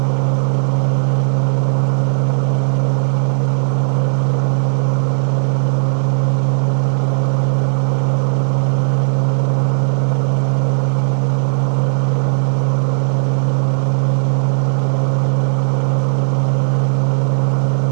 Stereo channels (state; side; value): silent; left; 69 dB below the other